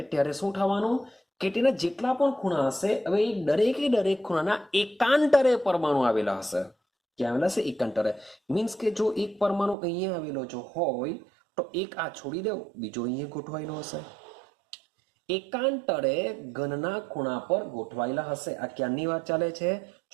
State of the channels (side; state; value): left; drops out; at 9.8 s